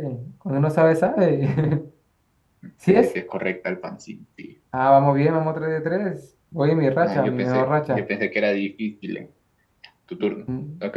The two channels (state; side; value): identical; both; correlation 1.00